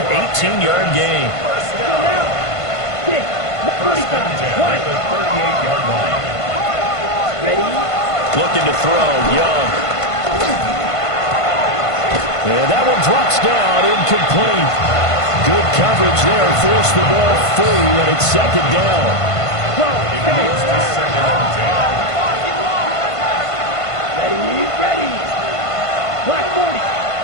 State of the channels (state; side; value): late; right; 1.5 ms